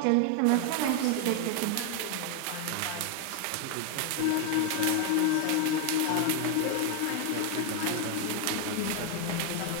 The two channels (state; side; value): different; both; correlation 0.01